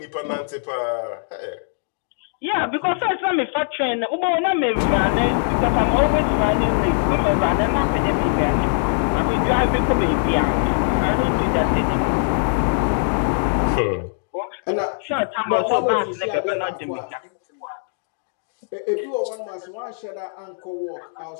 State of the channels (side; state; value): right; silent; digital silence